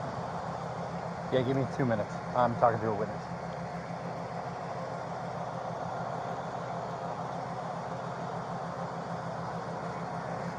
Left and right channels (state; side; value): identical; both; correlation 1.00